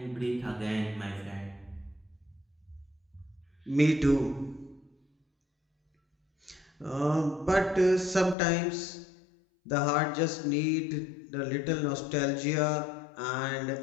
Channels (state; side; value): drops out; right; at 8.3 s